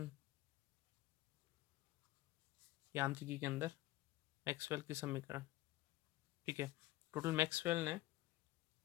यांत्रिकी के अंदर मैक्सवेल के समीकरण। ठीक है। टोटल मैक्सवेल ने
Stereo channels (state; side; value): quieter; right; 16.7 dB